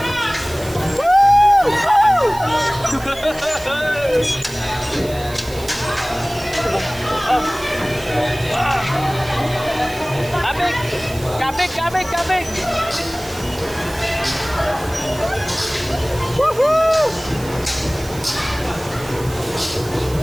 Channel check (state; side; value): noise; right; hiss, 17 dB below the sound